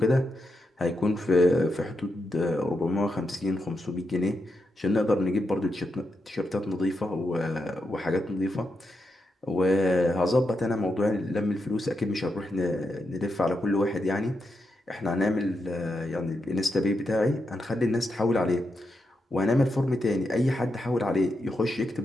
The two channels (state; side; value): normal; both; correlation 0.85